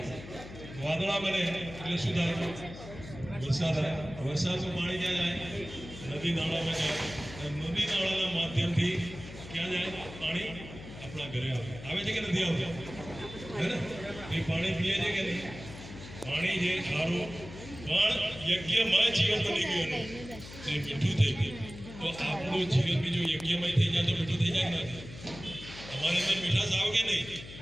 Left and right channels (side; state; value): left; noise; hum, 14 dB below the sound